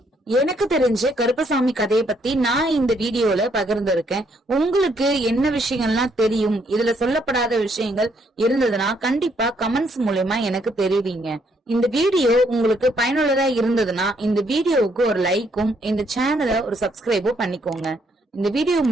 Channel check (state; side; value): normal; both; correlation 0.71